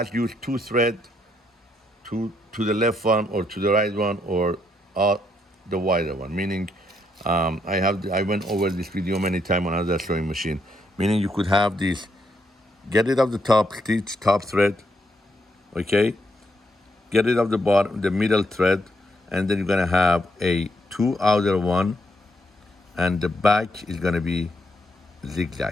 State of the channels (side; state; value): both; normal; correlation 0.76